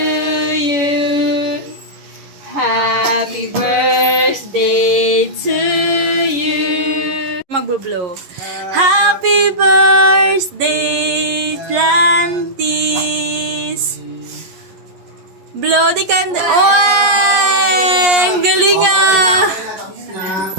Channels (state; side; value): late; left; 11 ms